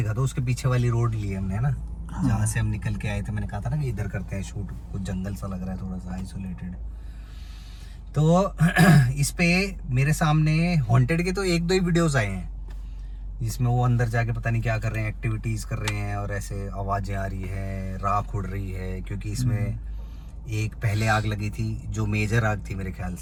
दो, उसके पीछे वाली रोड ली हमने, है ना, जहाँ से हम निकल के आए थे। मैंने कहा था ना कि इधर करते हैं शूट, कुछ जंगल सा लग रहा है, थोड़ा सा आइसोलेटेड। तो इस पे मेरे सामने हॉन्टेड के तो 1-2 ही वीडियोस आए हैं, जिसमें वो अंदर जाके पता नहीं क्या कर रहे हैं, एक्टिविटीज़ कर रहे हैं, और ऐसे आवाज़ें आ रही है, राख उड़ रही है। क्योंकि इसमें एक पहले आग लगी थी जो मेजर आग थी मेरे ख्याल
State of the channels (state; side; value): identical; both; correlation 1.00